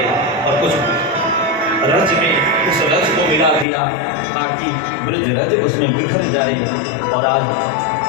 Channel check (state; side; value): drops out; right; at 3.7 s